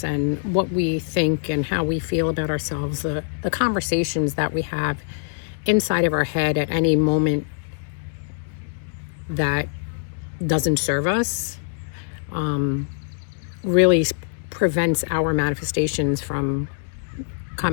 and what we think and how we feel about ourselves, the conversations that we have inside of our head at any moment that doesn't serve us, really prevents our manifestations from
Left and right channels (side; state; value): right; silent; digital silence